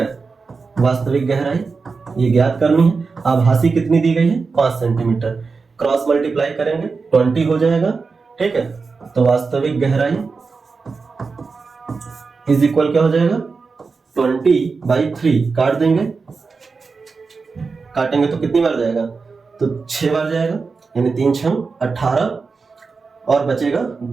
वास्तविक गहराई ये ज्ञात करनी है। आभासी कितनी दी गई है, 5 सेंटीमीटर। क्रॉस मल्टीप्लाई करेंगे 20 हो जाएगा, ठीक है। तो वास्तविक गहराई इज इक्वल क्या हो जाएगा, 20/3। काट देंगे, काटेंगे तो कितनी बार जाएगा, तो 6 बार जाएगा, यानी 3 6 18 और बचेगा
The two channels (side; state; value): left; quieter; 4.6 dB